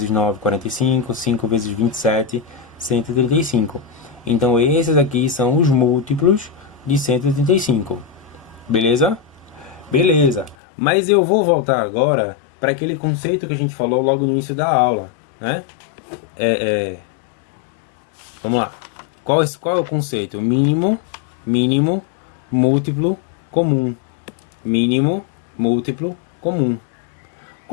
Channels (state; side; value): drops out; right; at 10.6 s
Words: 9, 45. 5 vezes 27, 135. Então esses aqui são os múltiplos de 135. Beleza? Beleza. Mas eu vou voltar agora para aquele conceito que a gente falou logo no início da aula, né? Vamos lá. Qual é o conceito? Mínimo, múltiplo, comum. Mínimo, múltiplo, comum.